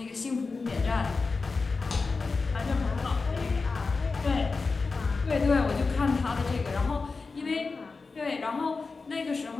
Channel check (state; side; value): quieter; right; 4.2 dB